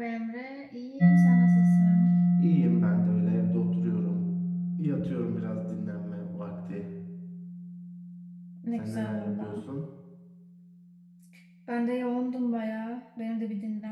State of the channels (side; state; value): both; identical; correlation 1.00